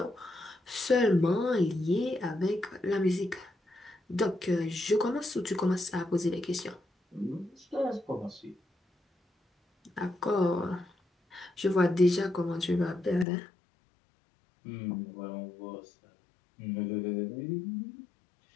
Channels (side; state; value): right; drops out; at 13.2 s